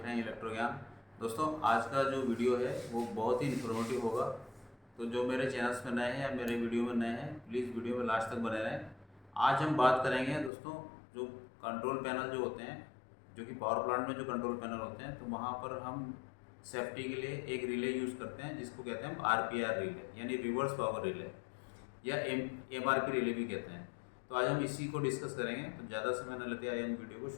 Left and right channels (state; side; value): drops out; right; at 10.5 s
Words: रहे हैं इलेक्ट्रो ज्ञान। दोस्तों, आज का जो वीडियो है वो बहुत ही इन्फॉर्मेटिव होगा। तो जो मेरे चैनल्स में नए हैं या मेरे वीडियो में नए हैं, प्लीज़ वीडियो में लास्ट तक बने रहें। आज हम बात करेंगे दोस्तों, जो कंट्रोल पैनल जो होते हैं, जो कि पावर प्लांट में जो कंट्रोल पैनल होते हैं, तो वहाँ पर हम सेफ्टी के लिए एक रिले यूज़ करते हैं जिसको कहते हैं हम RPR रिले, यानी रिवर्स पावर रिले, या MRP रिले भी कहते हैं। तो आज हम इसी को डिस्कस करेंगे। तो ज़्यादा समय न लेते आइए हम वीडियो को